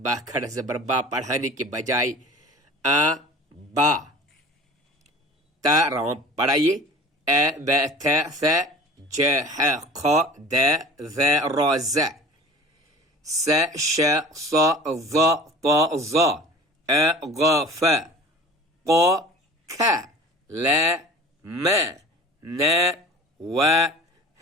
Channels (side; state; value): both; normal; correlation 0.41